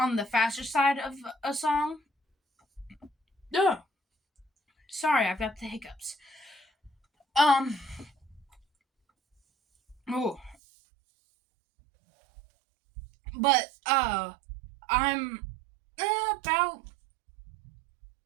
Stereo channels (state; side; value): drops out; left; at 10.6 s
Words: the faster side of a song. Ugh. Sorry, I've got the hiccups. Um. Oh. But, I'm about